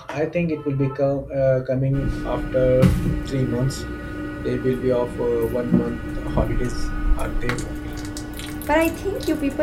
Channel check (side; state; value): both; identical; correlation 1.00